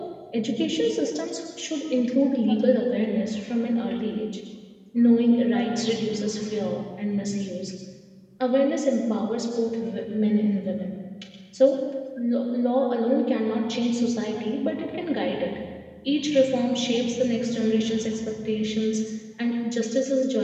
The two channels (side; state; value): both; identical; correlation 1.00